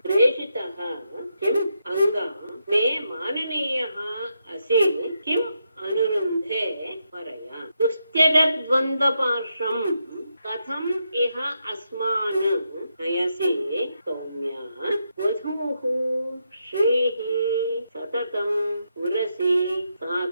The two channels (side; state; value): both; inverted; correlation -0.82